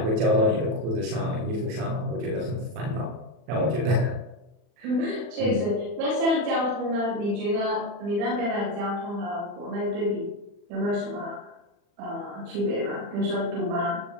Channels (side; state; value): left; late; 39 ms